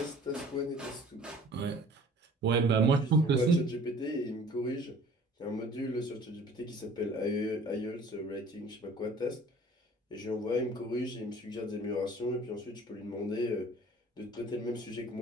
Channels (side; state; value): both; normal; correlation 0.49